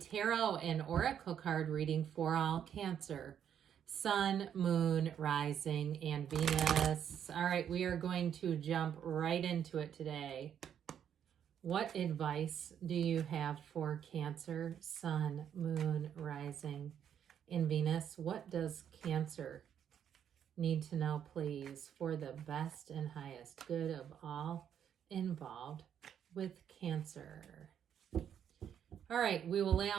and oracle card reading for all Cancer. Sun, Moon, Rising, and Venus. All right, we are going to jump right into it today. What advice do you have for Cancer, Sun, Moon, Rising, and Venus? What does Cancer need to know, please, for the best and highest good of all involved with Cancer? All right, we will lay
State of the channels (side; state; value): left; quieter; 9.0 dB